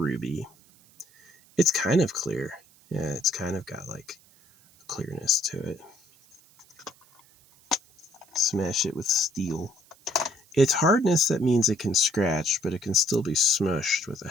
It's kind of clear. Yeah, it's kind of got like a clearness to it. Smash it with steel. Its hardness, that means it can scratch, but it can still be smushed with a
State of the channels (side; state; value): right; noise; hiss, 29 dB below the sound